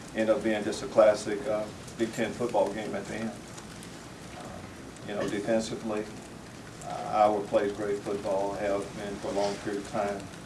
ended up being just a classic Big Ten football game at the end. Defensively, Iowa plays great football, have been for a long period of time.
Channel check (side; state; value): both; identical; correlation 1.00